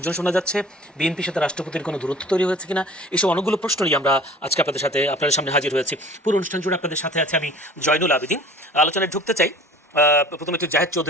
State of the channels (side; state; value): both; normal; correlation 0.45